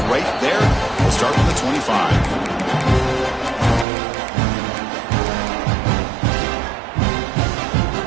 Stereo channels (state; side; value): drops out; left; at 3.9 s